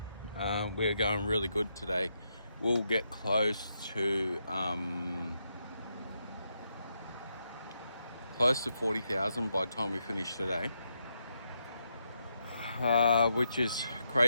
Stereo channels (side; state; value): both; inverted; correlation -0.81